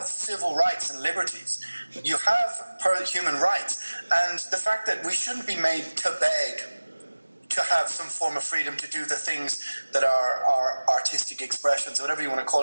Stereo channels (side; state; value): both; inverted; correlation -1.00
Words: civil rights and liberties. You have human rights, and the fact that we shouldn't be made to beg to have some form of freedom to do the things that are artistic expressions, or whatever you want to call